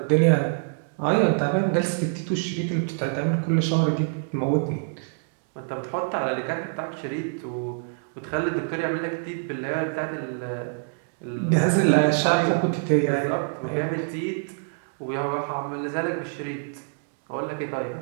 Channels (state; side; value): silent; left; digital silence